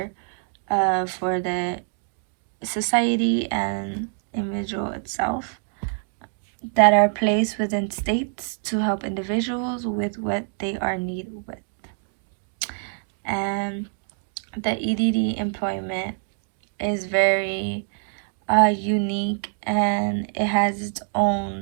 for the society and individual itself, that are placed within states to help individuals with what they are needed with. And the EDD employment is very unique, and it has its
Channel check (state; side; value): silent; left; 57 dB below the other